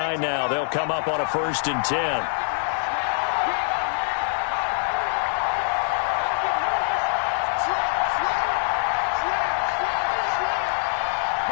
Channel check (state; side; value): silent; right; digital silence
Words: now, they'll come up on a 1st and 10.